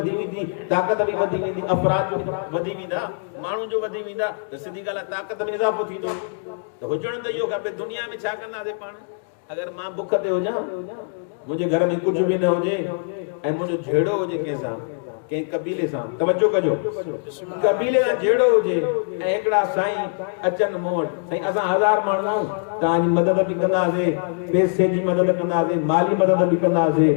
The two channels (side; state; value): right; silent; 64 dB below the other